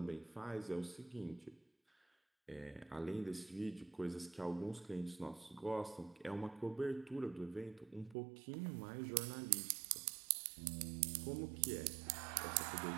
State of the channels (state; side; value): drops out; left; at 8.2 s